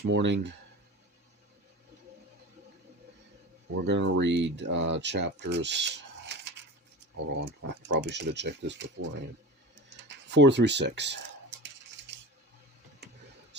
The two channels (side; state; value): both; normal; correlation 0.31